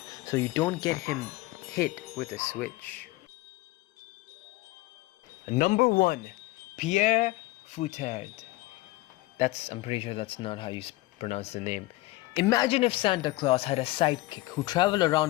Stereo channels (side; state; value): right; quieter; 19.3 dB